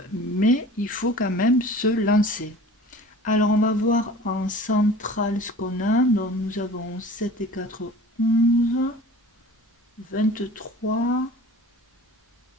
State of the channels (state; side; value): normal; both; correlation 0.42